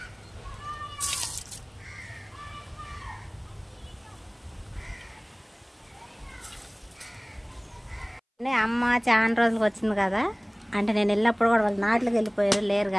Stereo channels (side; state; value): both; identical; correlation 1.00